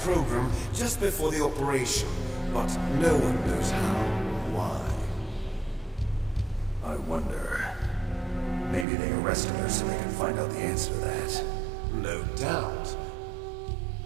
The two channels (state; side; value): drops out; left; at 8.8 s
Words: program just before the operation, but no one knows how or why. I wonder... Maybe they arrested her so they can find out the answer to that. No doubt.